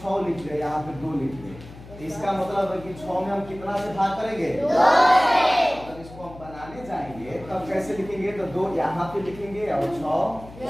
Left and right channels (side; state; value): left; noise; hum, 17 dB below the sound